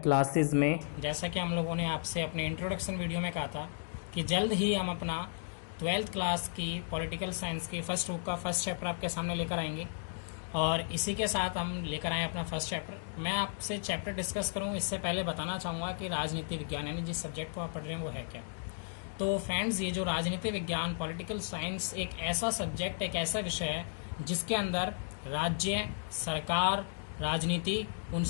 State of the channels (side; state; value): right; silent; digital silence